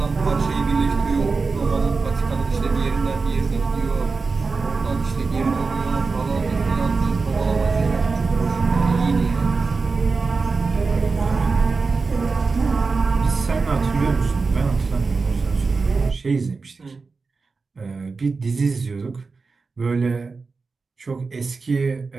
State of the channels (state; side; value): quieter; left; 4.3 dB